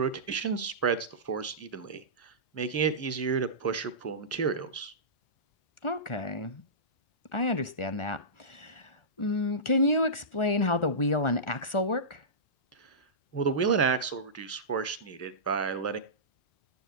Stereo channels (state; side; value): late; right; 1.4 ms